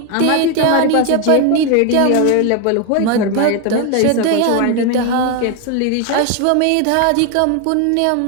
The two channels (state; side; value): different; both; correlation 0.01